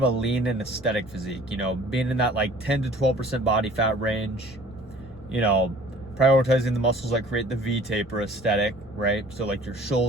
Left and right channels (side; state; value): both; normal; correlation 0.51